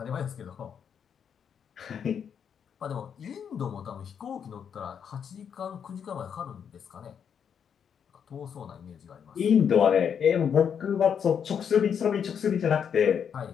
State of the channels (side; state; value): right; quieter; 7.7 dB